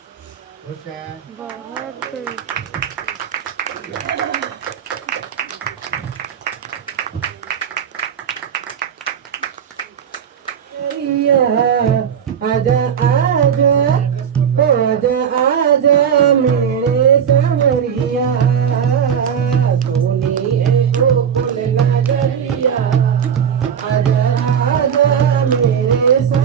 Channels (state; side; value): quieter; left; 7.9 dB